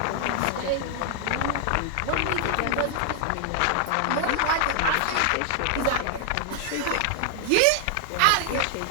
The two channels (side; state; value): both; different; correlation 0.00